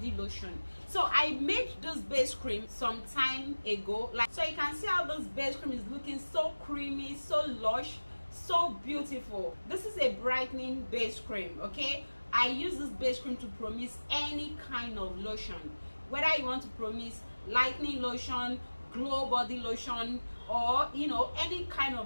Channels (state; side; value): inverted; both; correlation -1.00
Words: lotion. So I made this base cream some time ago, like, so you can see how this base cream is looking so creamy, so lush, so beautiful. This is a brightening base cream. Okay, I use this base cream to promise any kind of lotion, whether you want to promise lightening lotion, glow body lotion, or any kind